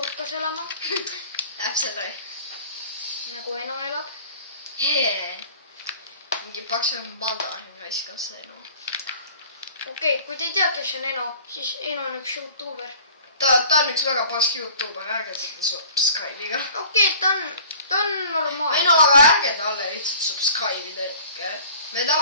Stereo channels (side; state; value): both; inverted; correlation -0.49